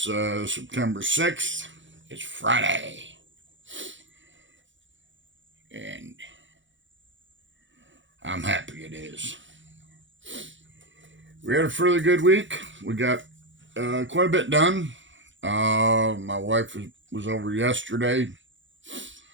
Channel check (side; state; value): left; late; 0.55 ms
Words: September 6th. It's Friday. And I'm happy it is. We had a fairly good week. We got quite a bit done. My wife was over yesterday